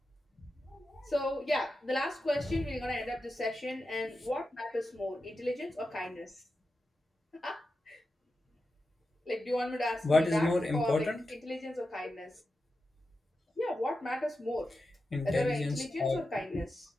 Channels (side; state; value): both; normal; correlation 0.90